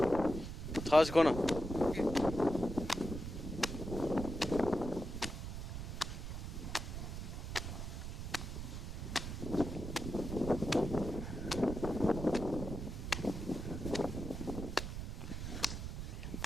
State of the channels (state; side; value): noise; right; rumble, 5 dB below the sound